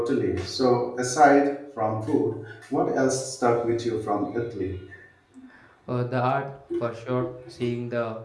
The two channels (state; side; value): identical; both; correlation 1.00